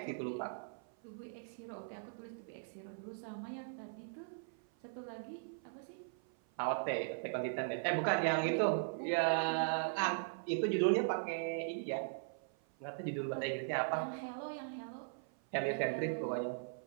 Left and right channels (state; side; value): silent; left; 52 dB below the other